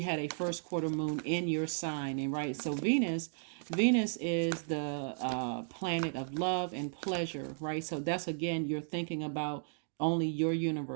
a first quarter moon in your sign, and right, so Venus is the planet of love and pleasure, right? So that's again, you're thinking about only your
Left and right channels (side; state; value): left; silent; digital silence